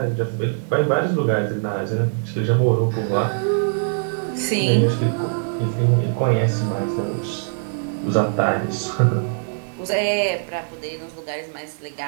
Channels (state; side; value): silent; left; digital silence